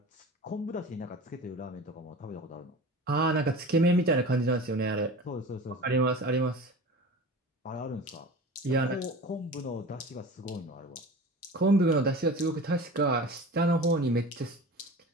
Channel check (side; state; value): both; normal; correlation 0.35